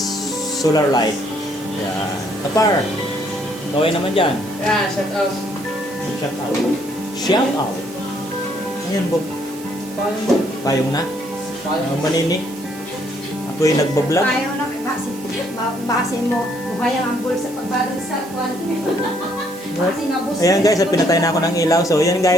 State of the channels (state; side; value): noise; right; hiss, 18 dB below the sound